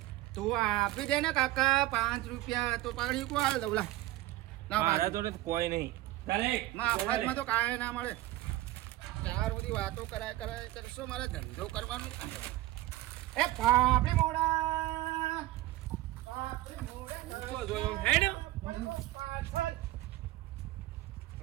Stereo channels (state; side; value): quieter; left; 16.4 dB